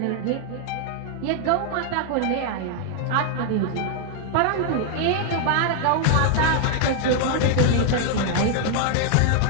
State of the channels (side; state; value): both; different; correlation 0.00